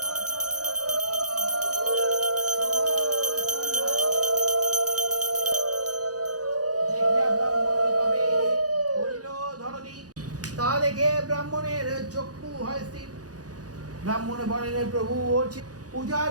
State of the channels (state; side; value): late; left; 0.68 ms